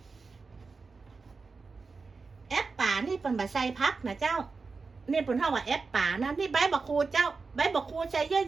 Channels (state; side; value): quieter; left; 4.4 dB